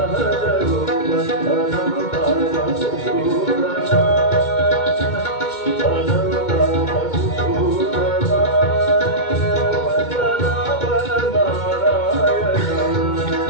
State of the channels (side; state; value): right; late; 2.2 ms